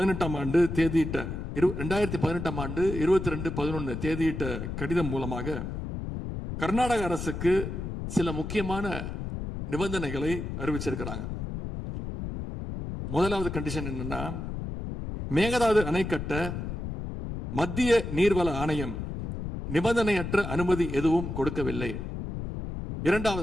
ஆண்டு தேதியிட்ட 2018 ஆண்டு 22/11 தேதியிட்ட கடிதம் மூலமாக கர்நாடக அரசுக்கு சில முக்கியமான நிபந்தனைகளை அறிவிச்சிருக்கிறாங்க. முதலாவது கண்டிஷன் என்னன்னா, மேகதாது அணை கட்ட மத்திய நீர்வள ஆணையம் நிபந்தனையற்ற அனுமதி எதுவும் கொடுக்கவில்லை.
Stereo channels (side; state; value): left; noise; rumble, 6 dB below the sound